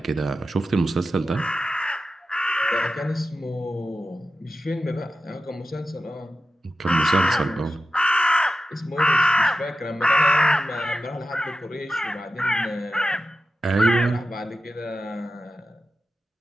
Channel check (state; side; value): normal; both; correlation 0.92